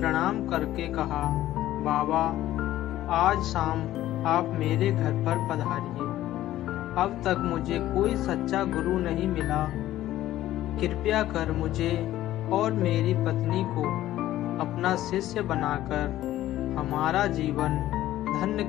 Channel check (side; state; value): right; quieter; 14.1 dB